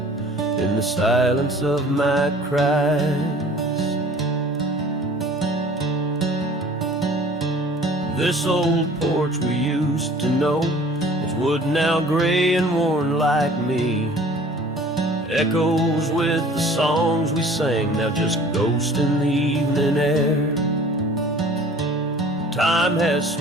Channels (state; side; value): normal; both; correlation 0.49